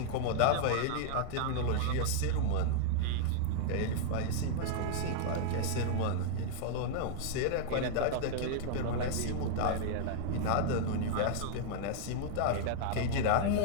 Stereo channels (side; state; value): both; different; correlation -0.01